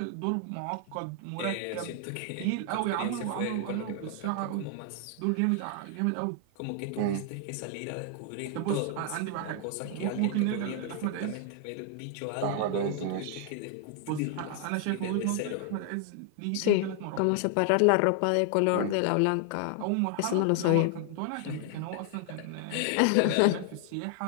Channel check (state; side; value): different; both; correlation 0.00